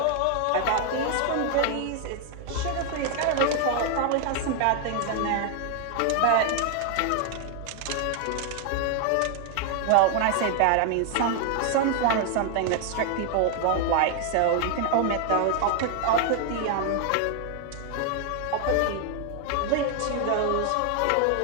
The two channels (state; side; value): different; both; correlation 0.00